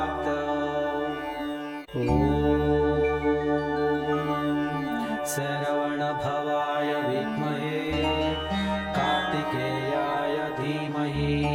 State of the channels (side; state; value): both; identical; correlation 1.00